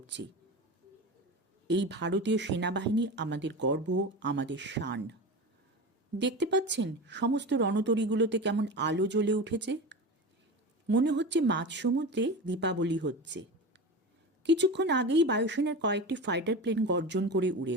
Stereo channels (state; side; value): normal; both; correlation 0.27